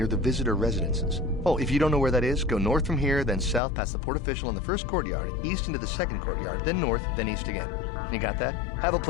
the visitor residences. Oh, if you don't know where that is, go north from here, then south past the port official in the first courtyard, east into the second courtyard, then north, then east again. You got that? Have a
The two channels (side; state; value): right; drops out; at 3.6 s